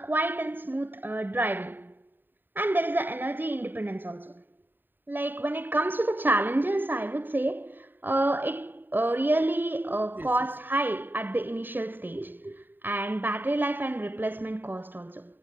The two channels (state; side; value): late; left; 0.092 ms